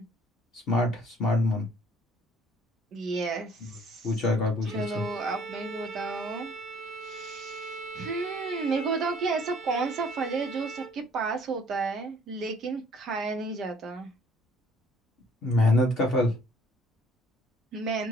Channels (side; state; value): both; normal; correlation 0.57